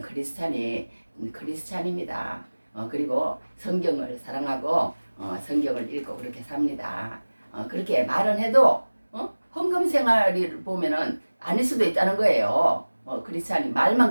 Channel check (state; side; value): inverted; both; correlation -1.00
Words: 크리스찬입니다. 그리고 성경을 사랑하고 성경을 읽고 그렇게 삽니다. 그렇게 말은 해도 헌금 생활을 보면은 아닐 수도 있다는 거예요. 크리스찬이